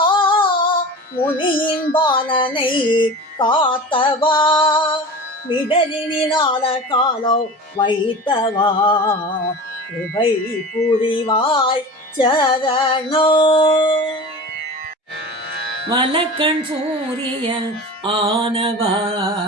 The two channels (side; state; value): both; normal; correlation 0.34